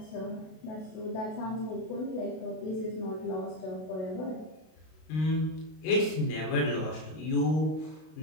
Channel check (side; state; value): right; late; 32 ms